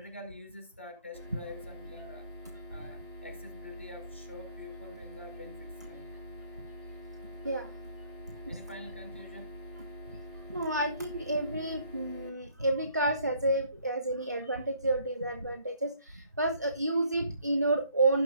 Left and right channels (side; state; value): both; inverted; correlation -0.63